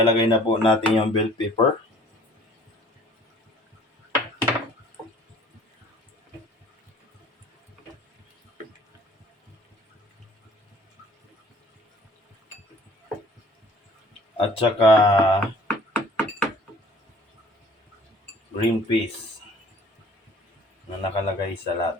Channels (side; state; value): both; normal; correlation 0.52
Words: na po natin yung bell pepper. At saka green peas na nakalagay sa